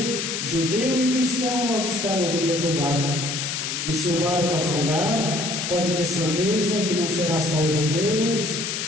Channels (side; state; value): left; noise; hiss, 3 dB below the sound